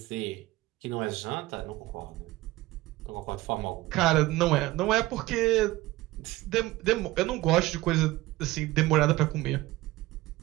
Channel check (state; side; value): quieter; left; 18.5 dB